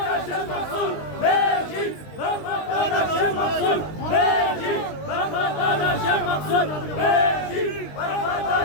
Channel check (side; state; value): right; late; 20 ms